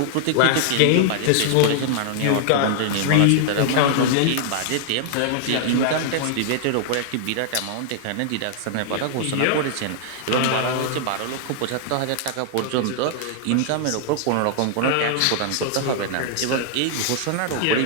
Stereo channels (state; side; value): different; both; correlation -0.01